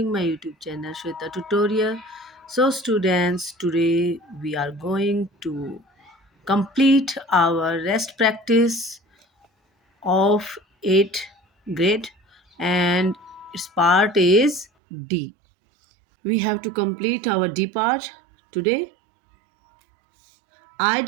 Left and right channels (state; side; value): drops out; left; at 14.7 s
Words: my YouTube channel Shweta Tutorial. So students, today we are going to complete our rest practice of 8th grade and its part is D. We have to complete our D part today.